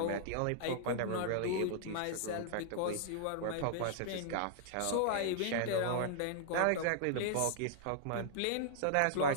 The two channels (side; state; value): both; different; correlation -0.01